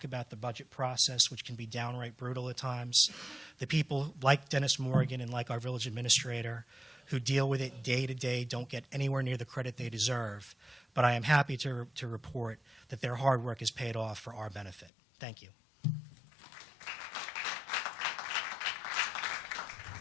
about the budget process, which can be downright brutal at times. The people like Dennis Morgan and like our village administrator who deal with it day to day don't get anywhere near the credit they deserve. But I am happy to report that their hard work is paid off for our benefit. Thank you.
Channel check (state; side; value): drops out; right; at 14.9 s